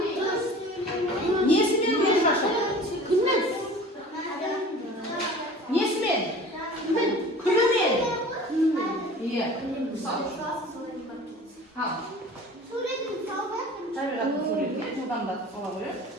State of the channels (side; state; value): both; normal; correlation 0.42